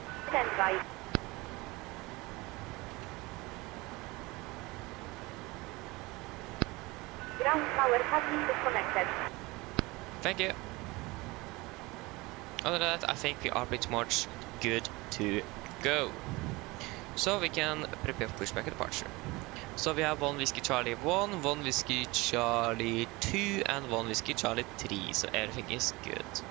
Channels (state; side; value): quieter; left; 22.8 dB